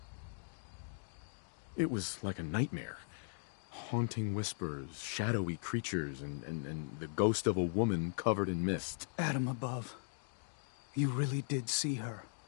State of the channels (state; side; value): silent; right; digital silence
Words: It was like a nightmare. Haunting whispers, shadowy creatures, and the ghost of a woman covered in mist. Adam above. You really did see her.